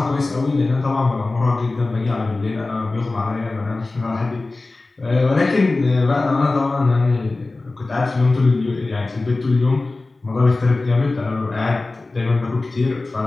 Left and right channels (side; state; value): right; quieter; 3.3 dB